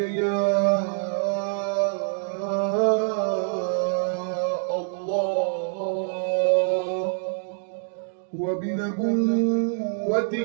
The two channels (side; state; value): left; silent; digital silence